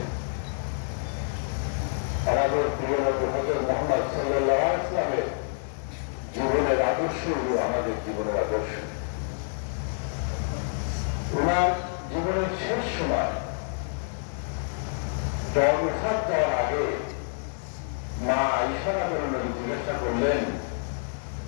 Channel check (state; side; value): silent; right; digital silence